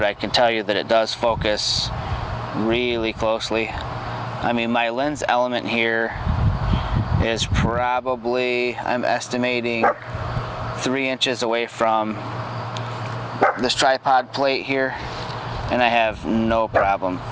I can tell you that it does focus really closely. I mean, my lens element here is probably, I'm estimating, 3 inches away from this tripod plate here, and I have no problem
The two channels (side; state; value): both; identical; correlation 1.00